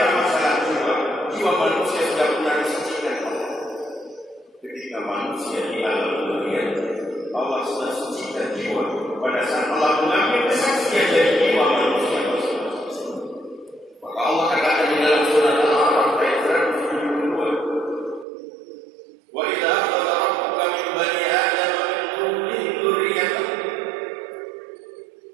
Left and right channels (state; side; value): drops out; left; at 18.2 s